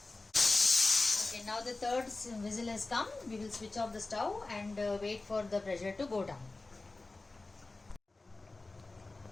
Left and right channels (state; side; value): quieter; right; 3.3 dB